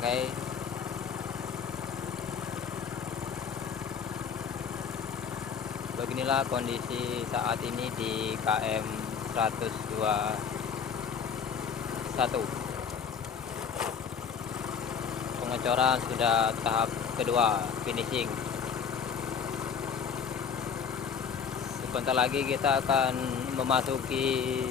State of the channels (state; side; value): quieter; right; 6.8 dB